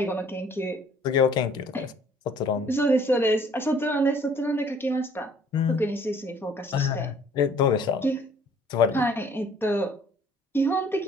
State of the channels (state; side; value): normal; both; correlation 0.57